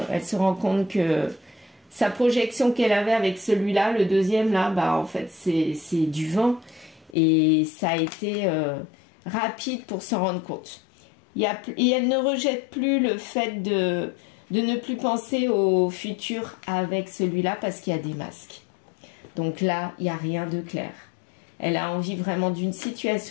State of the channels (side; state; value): right; drops out; at 7.2 s